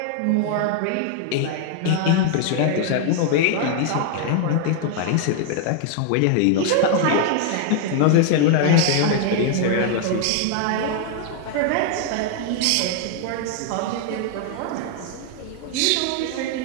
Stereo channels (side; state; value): both; different; correlation 0.00